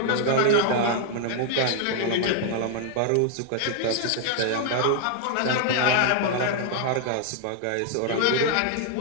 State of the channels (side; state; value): both; different; correlation 0.00